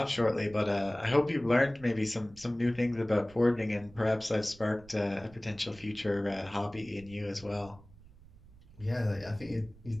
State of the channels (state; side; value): noise; right; rumble, 22 dB below the sound